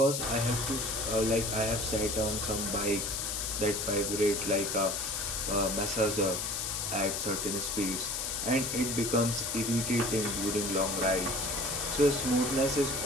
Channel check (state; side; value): noise; left; hiss, 2 dB below the sound